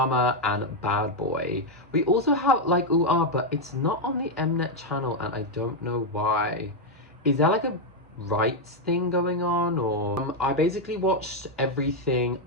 and Bad Boy. We also have like but it's not on the Mnet channel, and I don't know why. Is there like a rights thing going on, or I basically watched everything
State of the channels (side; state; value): both; normal; correlation 0.02